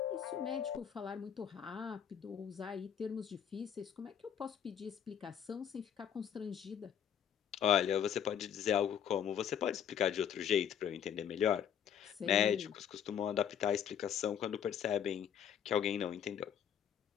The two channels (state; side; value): quieter; right; 8.7 dB